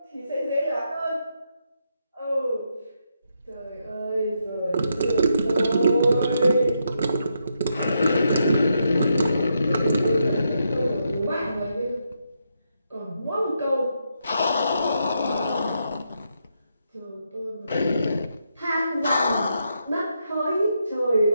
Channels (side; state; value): both; inverted; correlation -0.81